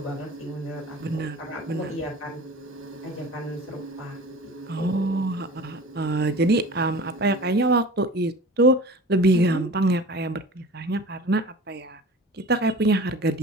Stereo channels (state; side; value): normal; both; correlation 0.39